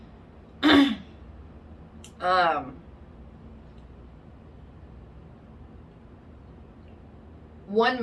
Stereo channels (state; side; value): identical; both; correlation 1.00